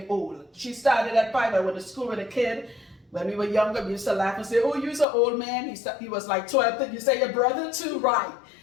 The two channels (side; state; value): right; drops out; at 5.1 s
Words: old. She started at 5. I went to school with a kid. When we were younger, we used to laugh and say, oh, you're an old man. He was like 12. You say your brother too, right?